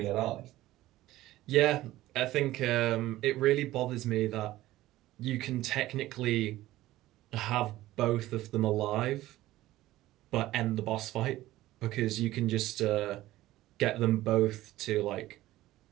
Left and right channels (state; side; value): quieter; left; 16.0 dB